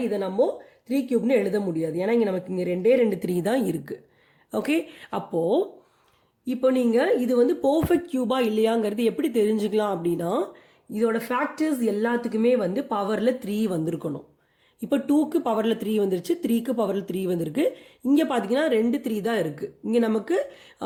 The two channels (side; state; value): both; identical; correlation 1.00